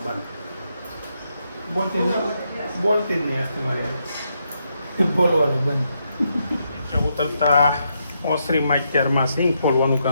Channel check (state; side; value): inverted; both; correlation -0.80